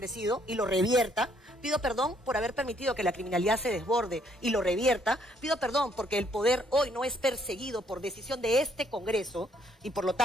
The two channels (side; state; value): both; normal; correlation 0.68